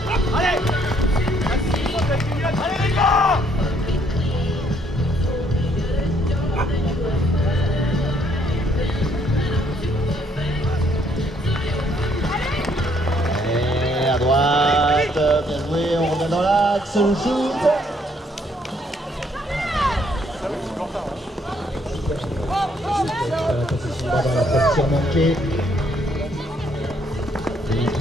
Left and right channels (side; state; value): both; normal; correlation 0.68